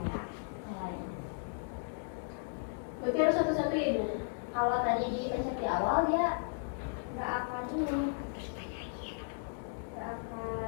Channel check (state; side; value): silent; right; digital silence